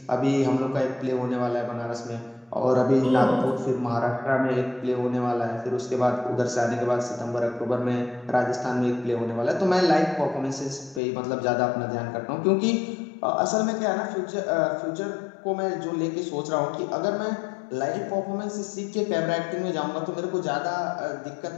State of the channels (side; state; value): right; drops out; at 11.0 s